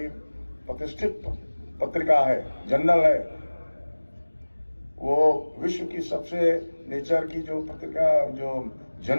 प्रतिष्ठित पत्रिका है, जर्नल है, वो विश्व की सबसे नेचर की जो पत्रिका, जो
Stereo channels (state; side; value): inverted; both; correlation -1.00